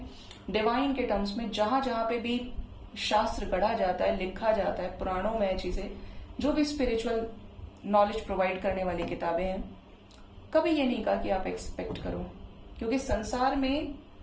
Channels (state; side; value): identical; both; correlation 1.00